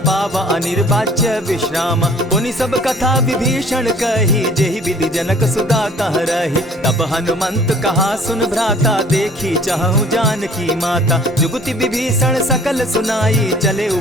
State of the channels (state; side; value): normal; both; correlation 0.52